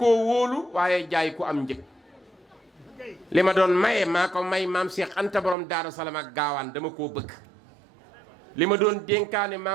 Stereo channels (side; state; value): left; drops out; at 5.6 s